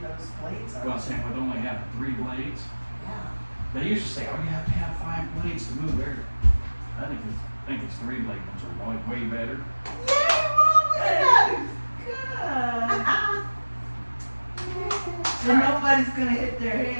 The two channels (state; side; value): inverted; both; correlation -1.00